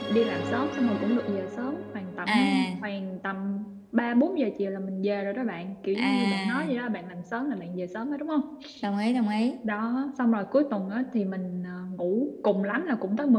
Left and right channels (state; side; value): identical; both; correlation 1.00